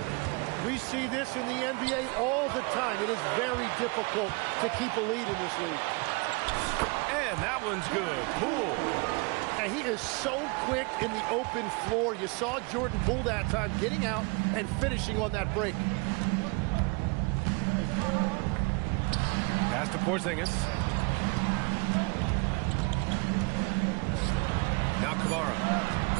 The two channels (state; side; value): quieter; left; 30.9 dB